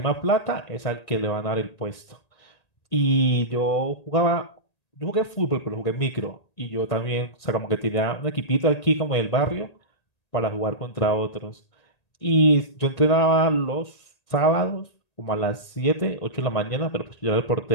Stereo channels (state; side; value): late; right; 1.8 ms